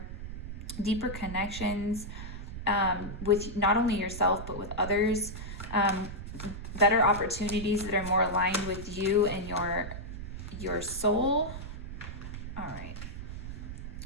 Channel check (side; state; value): right; noise; rumble, 8 dB below the sound